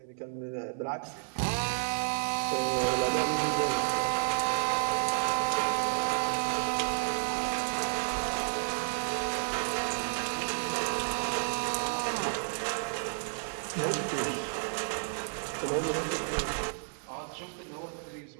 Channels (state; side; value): silent; left; 57 dB below the other